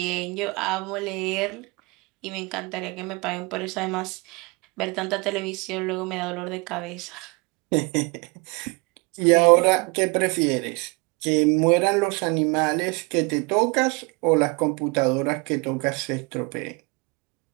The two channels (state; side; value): quieter; left; 28.5 dB